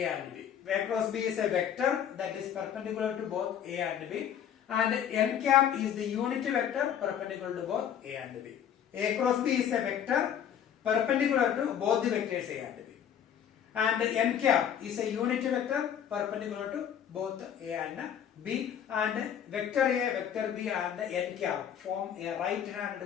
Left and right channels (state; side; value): quieter; right; 9.2 dB